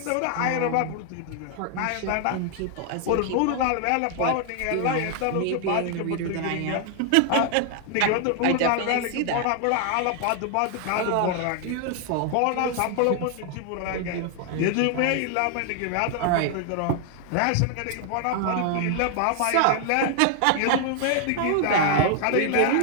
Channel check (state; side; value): different; both; correlation 0.00